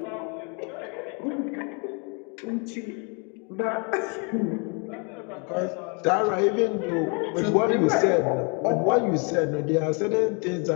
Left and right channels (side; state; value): right; quieter; 35.5 dB